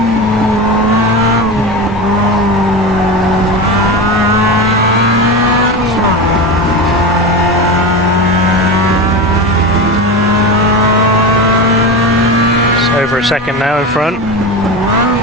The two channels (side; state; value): both; normal; correlation 0.23